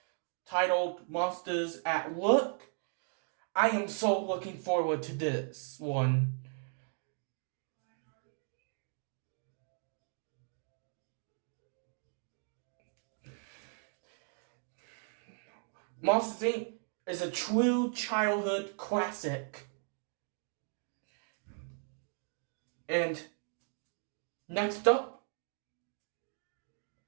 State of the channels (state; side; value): silent; left; 53 dB below the other